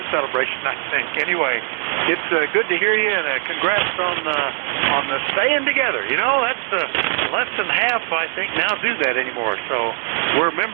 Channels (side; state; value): left; silent; 56 dB below the other